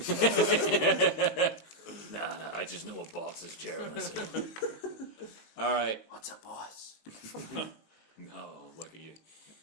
Nah, I just know a boss's chair when I see him. All right. What's a boss? No, look at you.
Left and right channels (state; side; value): late; right; 18 ms